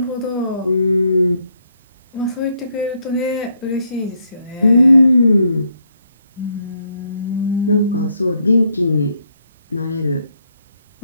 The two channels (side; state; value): both; inverted; correlation -0.74